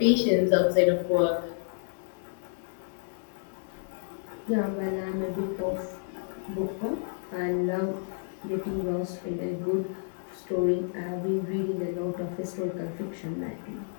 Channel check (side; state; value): right; silent; 58 dB below the other